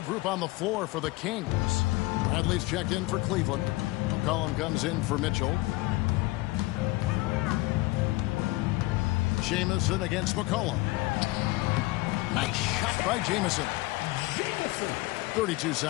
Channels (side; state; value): right; quieter; 20.8 dB